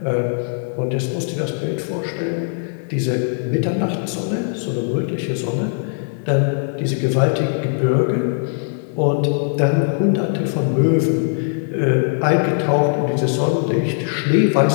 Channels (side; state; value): right; silent; digital silence